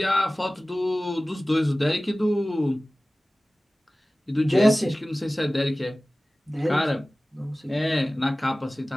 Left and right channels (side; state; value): both; normal; correlation 0.98